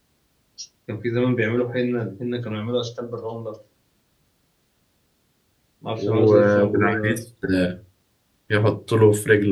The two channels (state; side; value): identical; both; correlation 1.00